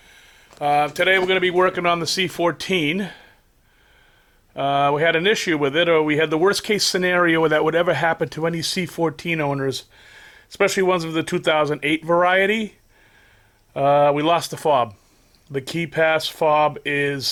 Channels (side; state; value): both; identical; correlation 1.00